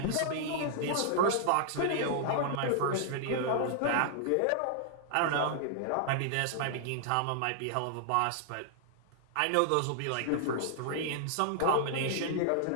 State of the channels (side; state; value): both; different; correlation -0.01